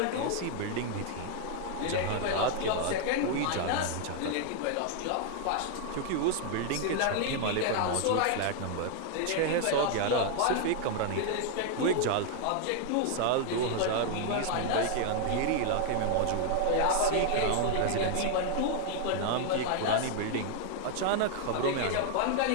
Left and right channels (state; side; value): different; both; correlation 0.00